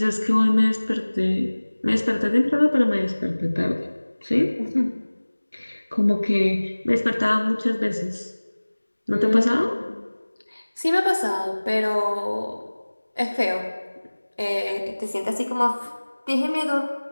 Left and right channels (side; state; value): both; inverted; correlation -1.00